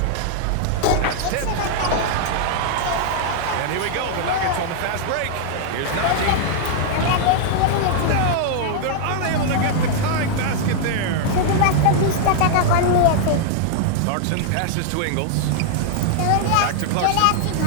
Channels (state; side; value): different; both; correlation -0.01